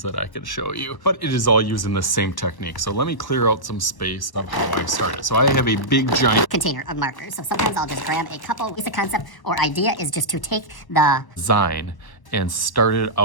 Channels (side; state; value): right; late; 1.1 ms